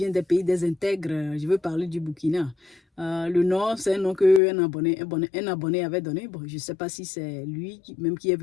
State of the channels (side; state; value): right; drops out; at 4.4 s